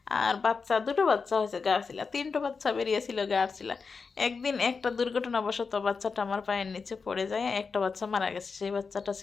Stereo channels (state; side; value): quieter; right; 5.0 dB